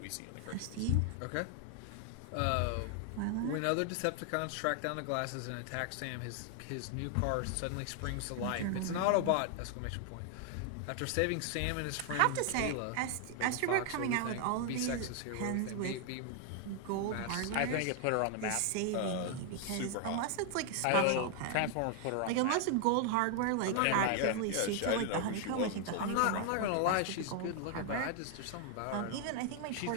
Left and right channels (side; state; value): both; different; correlation 0.00